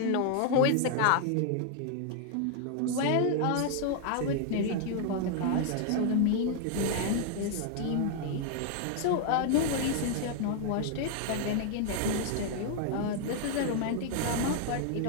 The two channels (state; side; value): different; both; correlation 0.00